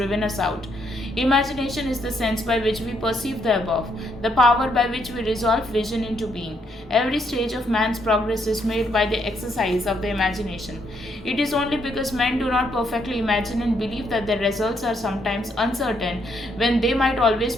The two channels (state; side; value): normal; both; correlation 0.74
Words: us out. Imagination is the sense by which we perceive the above, the power by which we resolve vision into being. Every stage of man's progress is made by the exercise of the imagination. It is only because men do not perfectly imagine and believe that their results are sometimes uncertain when they might always